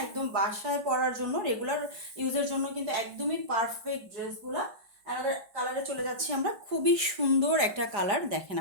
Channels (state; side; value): late; left; 4.9 ms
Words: একদম বাসায় পরার জন্য, রেগুলার ইউজের জন্য কিন্তু একদমই পারফেক্ট ড্রেসগুলা। আমাদের কালারে চলে যাচ্ছি আমরা, খুবই সুন্দর একটা কালার দেখেন